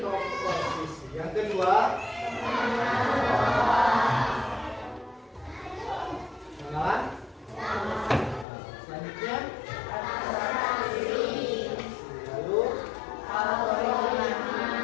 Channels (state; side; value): drops out; right; at 8.5 s